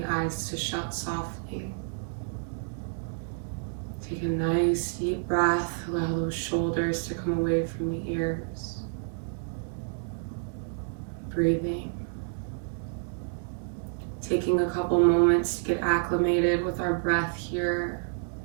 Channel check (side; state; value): left; silent; digital silence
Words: the eyes to shut softly. Take a nice deep breath, allow those shoulders to come away from the ears. Breathing. Taking a couple moments to get acclimated with our breath here.